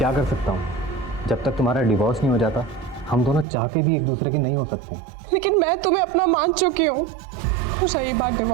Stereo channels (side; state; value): left; drops out; at 3.5 s